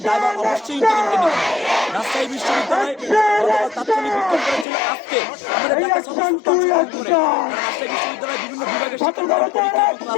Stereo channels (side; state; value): right; drops out; at 4.7 s